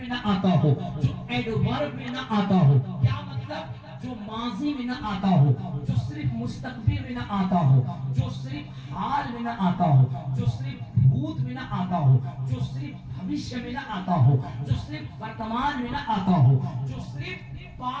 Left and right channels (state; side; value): identical; both; correlation 1.00